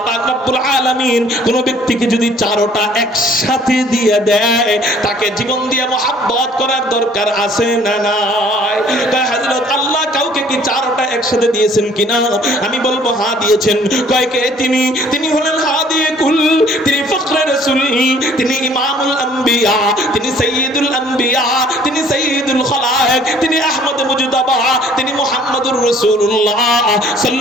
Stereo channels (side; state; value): both; normal; correlation 0.57